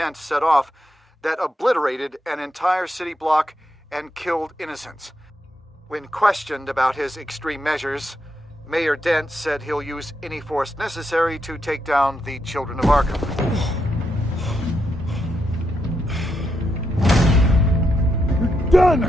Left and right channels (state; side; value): normal; both; correlation 0.82